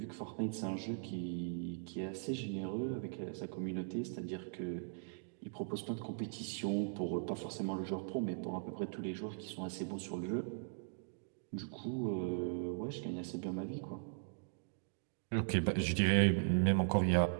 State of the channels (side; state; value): left; silent; digital silence